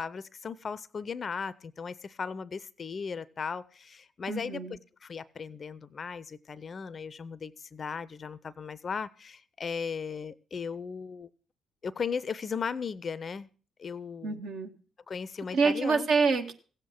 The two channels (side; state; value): both; normal; correlation 0.81